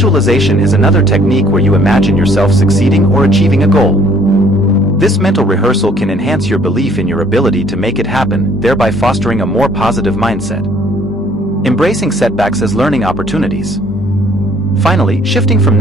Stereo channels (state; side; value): normal; both; correlation 0.60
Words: is another technique where you imagine yourself succeeding or achieving a goal. This mental rehearsal can enhance your belief in your ability to make it happen, thereby fostering a more positive mindset. Embracing setbacks as learning opportunities. Finally, shifting from